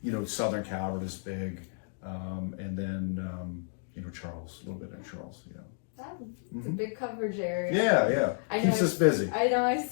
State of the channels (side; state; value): right; silent; digital silence